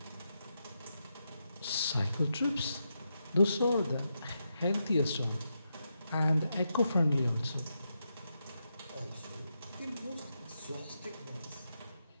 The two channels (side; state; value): both; inverted; correlation -0.85